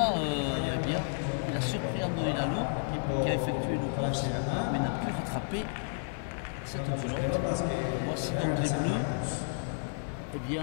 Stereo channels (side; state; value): right; silent; 56 dB below the other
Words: eh bien, il a surpris Andoni Lalo qui a effectué une course mais n'a pu rattraper cette pelote. Voici donc les Bleus eh